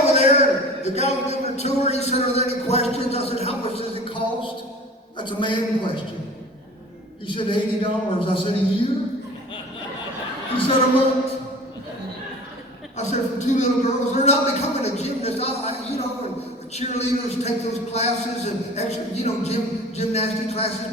there, the guy was giving a tour, he said, are there any questions? I said, how much does it cost? That's a man question. He said, $80. I said, a year? He said, a month. I said, for two little girls, they're not becoming a gymnast. And cheerleaders take those classes and extra, gymnastic classes,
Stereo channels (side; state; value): both; normal; correlation 0.42